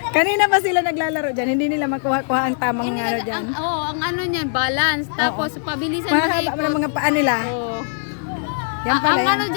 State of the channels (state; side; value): silent; right; digital silence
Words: Kanina pa sila naglalaro dyan, hindi nila makuha-kuha ang tamang ano dyan. Ang ano niya, balance. Tapos pabilisan mahaba mo ng mga paa nila. Yan pala yan. Ang ano